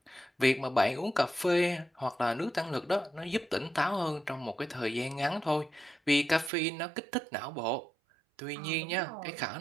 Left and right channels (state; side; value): drops out; left; at 6.5 s